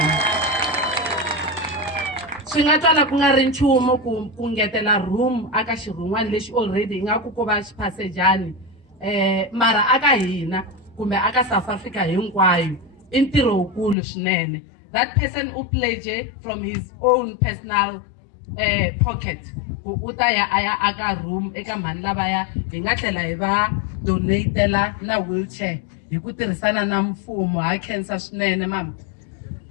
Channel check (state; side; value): drops out; right; at 14.0 s